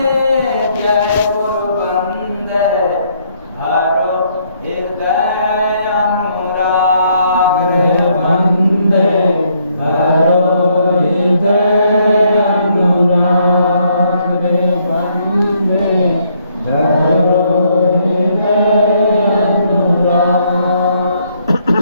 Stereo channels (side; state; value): both; inverted; correlation -0.70